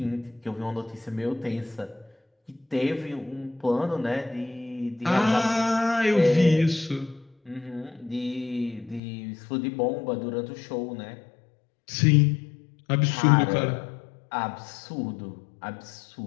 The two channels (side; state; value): right; drops out; at 9.0 s